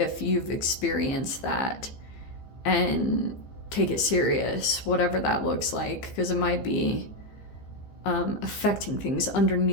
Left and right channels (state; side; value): late; right; 15 ms